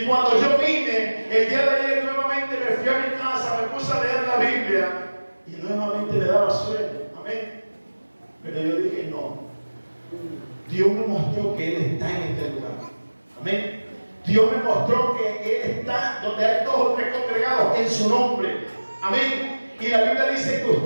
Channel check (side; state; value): both; inverted; correlation -1.00